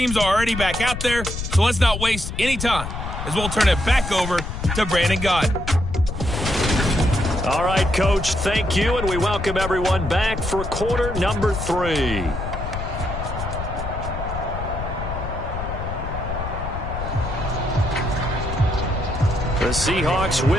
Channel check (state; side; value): noise; left; rumble, 6 dB below the sound